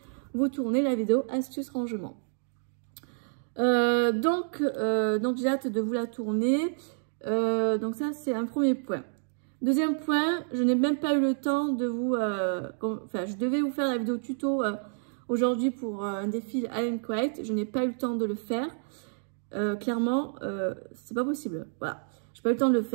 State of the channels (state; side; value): silent; left; digital silence